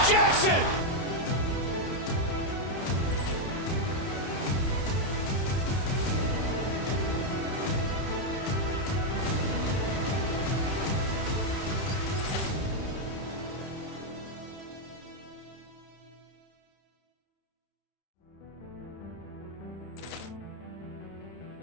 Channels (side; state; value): right; late; 31 ms